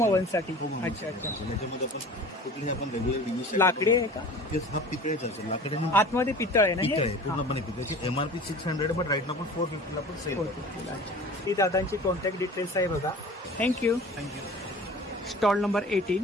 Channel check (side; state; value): both; normal; correlation 0.41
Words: ओव्हनसाठी. अच्छा. त्याच्यामध्ये आपण कुठलीही आपण रेग्युलर लाकडी आहे का? हा पितळेचा असेल. लाकडे आतमध्ये पितळ आहे ना? पितळ आहे, पूर्णपणे पितळाची. MRP 600 बट राईट ना आपण 450 आपण सेल करतो. ही दादांची कॉन्टॅक्ट डिटेल्स आहे बघा. थँक्यू. Stall number